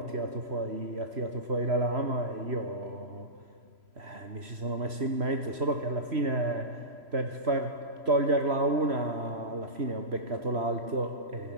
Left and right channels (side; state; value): left; late; 3.0 ms